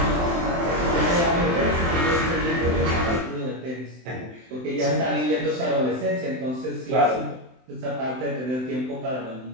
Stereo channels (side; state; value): left; late; 23 ms